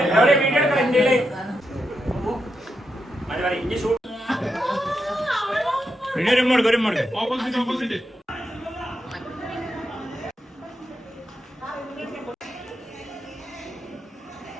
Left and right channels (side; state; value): both; normal; correlation 0.85